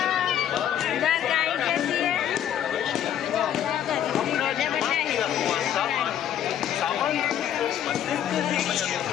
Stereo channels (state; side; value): quieter; right; 10.3 dB